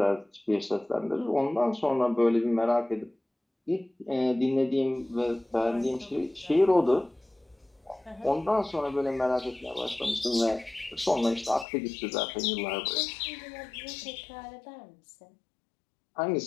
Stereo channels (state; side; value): drops out; right; at 11.7 s